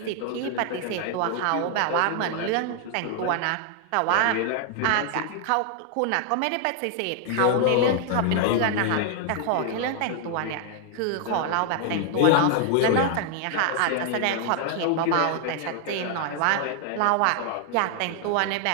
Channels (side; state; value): both; different; correlation 0.00